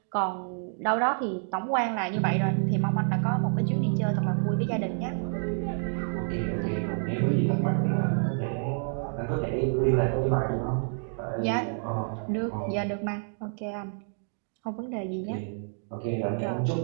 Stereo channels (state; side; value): silent; left; 59 dB below the other